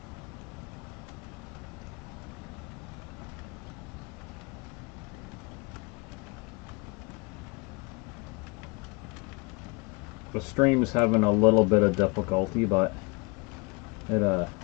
The stream's having a little bit of difficulty, but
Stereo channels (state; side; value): quieter; right; 29.1 dB